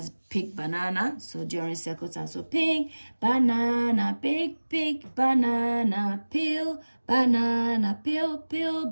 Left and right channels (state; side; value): inverted; both; correlation -1.00